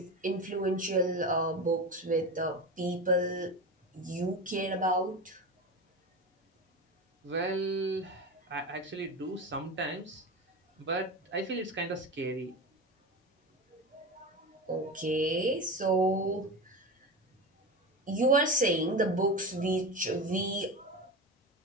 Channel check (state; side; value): normal; both; correlation 0.24